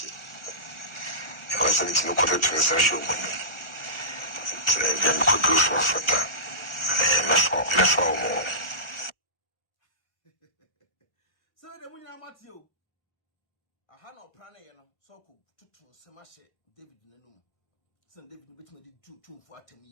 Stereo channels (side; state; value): right; late; 1.4 ms